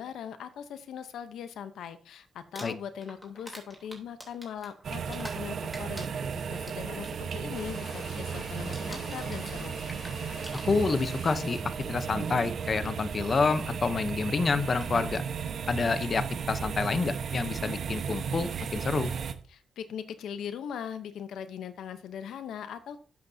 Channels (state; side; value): normal; both; correlation 0.83